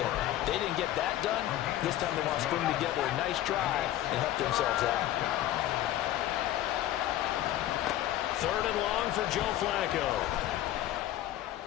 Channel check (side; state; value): right; quieter; 13.4 dB